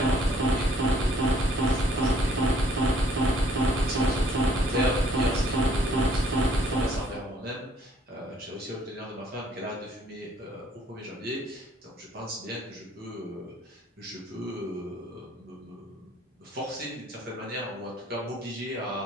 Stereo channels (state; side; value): normal; both; correlation 0.62